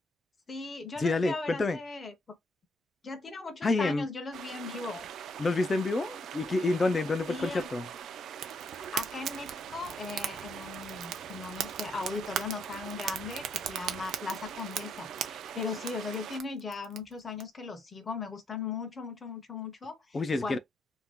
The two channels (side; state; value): both; normal; correlation 0.75